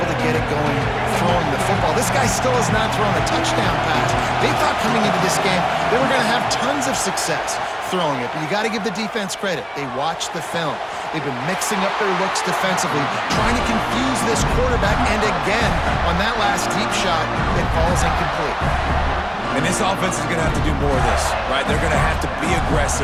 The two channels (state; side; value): identical; both; correlation 1.00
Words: to get it going throwing the football. This guy still has not thrown a touchdown pass. They thought coming into this game they were going to have tons of success throwing it, but you got to give the defense credit. They watched the film. They've been mixing up their looks defensively, trying to confuse this quarterback, and again, on that last deep shot, it falls incomplete. And this offense is going to have to do more of this, right? They're going to have to be